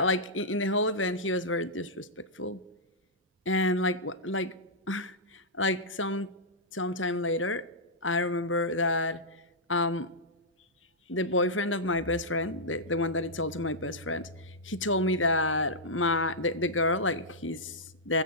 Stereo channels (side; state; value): both; normal; correlation -0.10